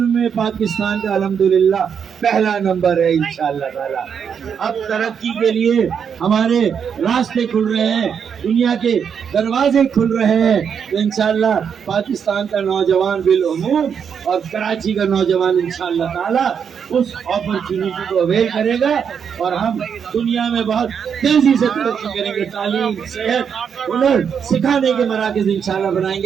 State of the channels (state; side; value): quieter; left; 7.2 dB